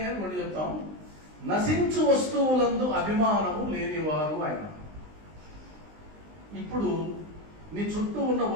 కానీ కొన్ని చెప్తాం. నశించు వస్తువులందు అభిమానము లేనివారు ఆయన. ఇప్పుడు నీ చుట్టూ ఉన్న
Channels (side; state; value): left; late; 19 ms